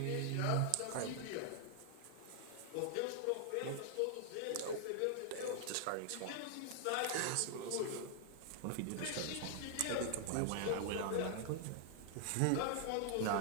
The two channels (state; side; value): different; both; correlation 0.00